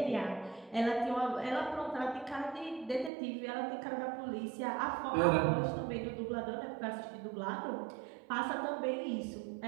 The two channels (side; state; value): left; drops out; at 3.1 s